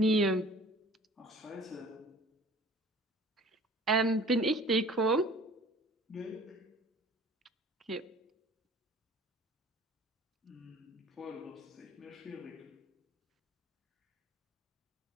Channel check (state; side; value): normal; both; correlation 0.48